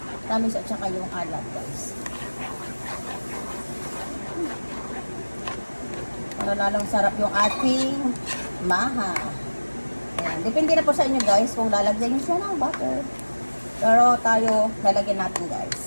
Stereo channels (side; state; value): both; inverted; correlation -1.00